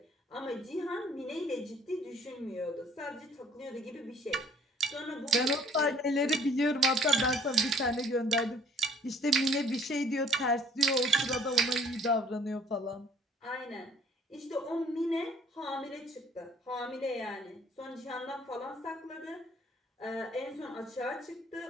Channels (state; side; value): normal; both; correlation 0.57